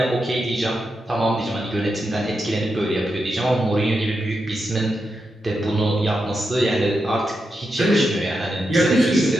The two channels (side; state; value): both; normal; correlation 0.86